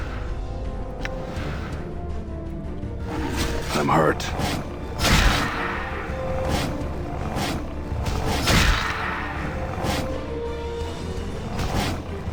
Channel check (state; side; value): identical; both; correlation 1.00